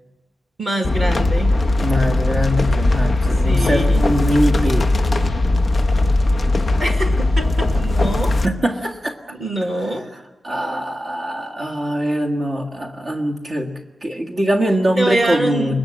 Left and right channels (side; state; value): both; normal; correlation 0.92